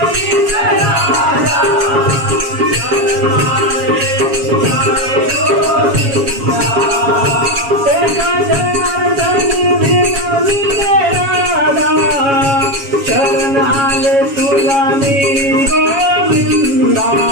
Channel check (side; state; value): left; late; 7.2 ms